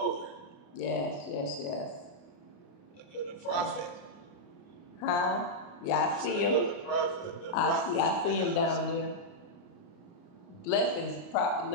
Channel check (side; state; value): right; late; 29 ms